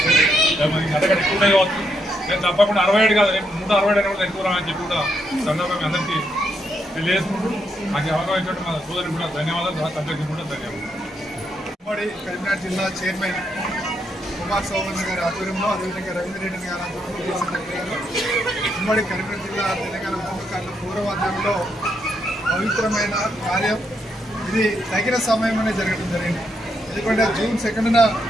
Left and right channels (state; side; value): normal; both; correlation 0.78